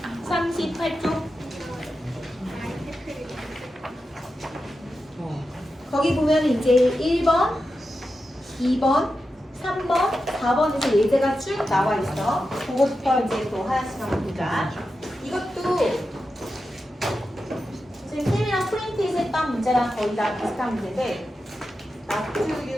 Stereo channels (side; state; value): both; normal; correlation 0.90